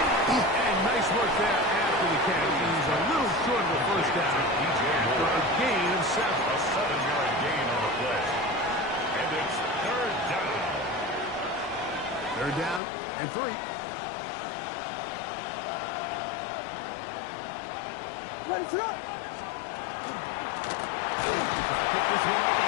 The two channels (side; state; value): right; drops out; at 12.8 s